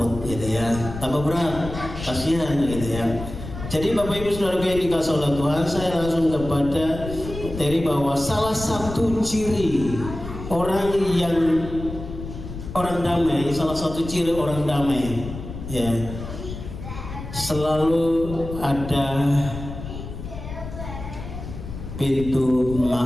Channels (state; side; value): noise; left; rumble, 10 dB below the sound